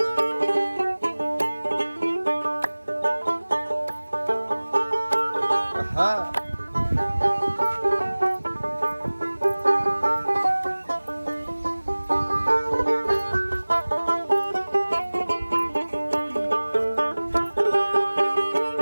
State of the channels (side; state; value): both; inverted; correlation -1.00